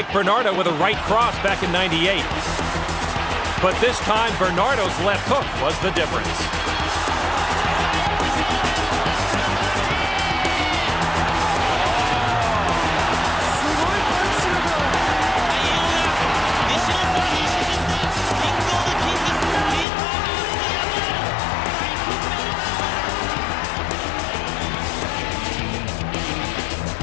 Bernardo with a right cross back in '98. But this time, Bernardo's left hook was the difference.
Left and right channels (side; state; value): right; drops out; at 19.9 s